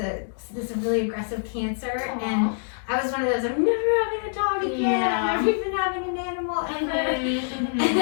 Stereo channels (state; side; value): silent; right; digital silence